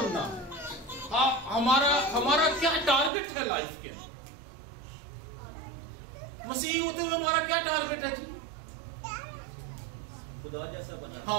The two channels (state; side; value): drops out; left; at 3.1 s